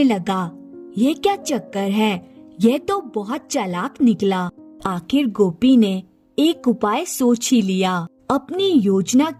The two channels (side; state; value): both; identical; correlation 1.00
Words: लगा, यह क्या चक्कर है? यह तो बहुत चालाक निकला। आखिर गोपी ने एक उपाय सोच ही लिया। अपनी योजना